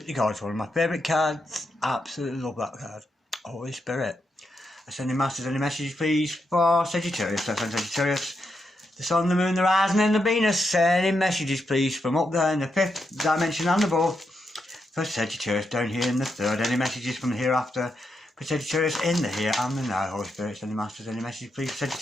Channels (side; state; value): both; normal; correlation 0.83